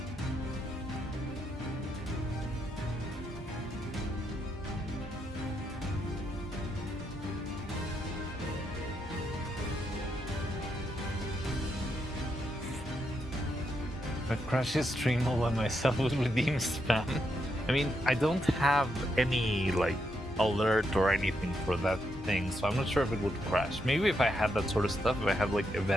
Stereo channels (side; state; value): both; normal; correlation 0.80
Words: If I crash his stream all by myself with redeem spam. I mean, I don't have any like alert or anything for that thing, so I'm not sure if it would crash. Maybe if I had that sort of stuff, if I had like